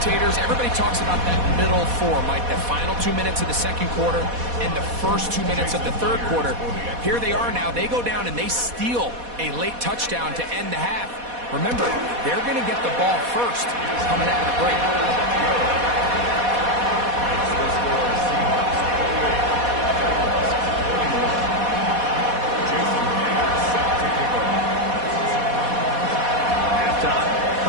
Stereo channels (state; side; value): late; left; 4.1 ms